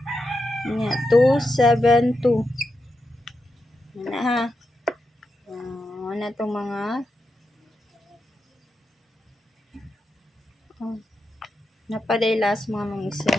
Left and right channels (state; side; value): normal; both; correlation 0.87